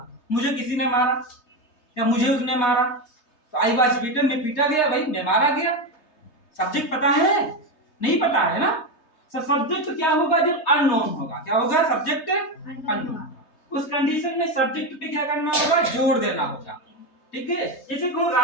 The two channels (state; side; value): late; right; 3.3 ms